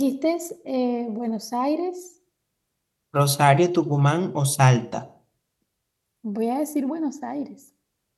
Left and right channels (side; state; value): both; identical; correlation 1.00